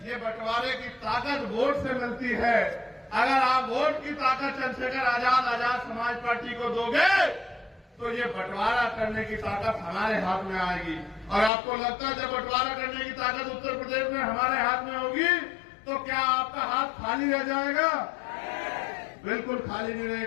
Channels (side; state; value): right; drops out; at 11.5 s